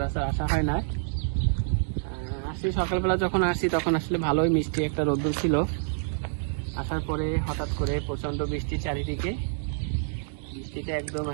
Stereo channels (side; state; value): left; silent; digital silence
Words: আসা হয় না। আসি সকালবেলা, যখন আসি তখন আসলে ভালোই মিষ্টি একটা রোদ্দুর ছিল। আসার পরে হঠাৎ করে প্রচণ্ড বৃষ্টি চারিদিকে। বৃষ্টিতে একদম